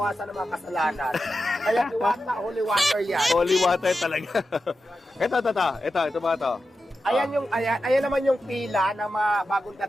ng mga kasalanan. Kaya Diwata, holy water yan. Holy water talaga. Ito ba ito? Ayan naman yung pila na mga bagong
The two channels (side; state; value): both; normal; correlation 0.91